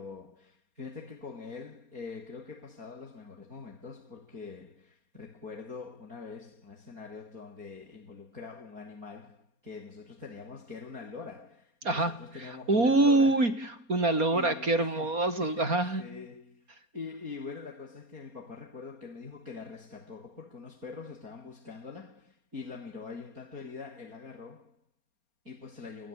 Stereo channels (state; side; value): late; left; 4.3 ms